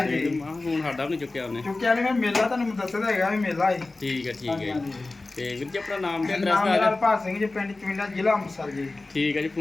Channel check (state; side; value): quieter; right; 3.2 dB